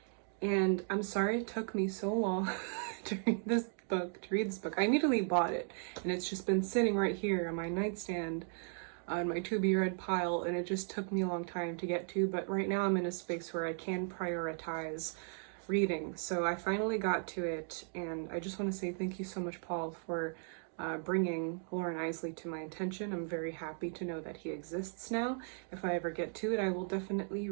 And I'm sorry it took me so long to read this book. I immediately bought it, and it's just been sitting right here on my nightstand on my to-be-read pile, and it just took me a long time to get to, but right now I'm in a space where I can prioritize reading. So I finally got to it, and I just want to say thank you so much, Paul, for bringing Lauren Isley to my attention. I'm very happy to know that he exists now. If I ever get to it, I will definitely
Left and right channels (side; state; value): left; silent; 53 dB below the other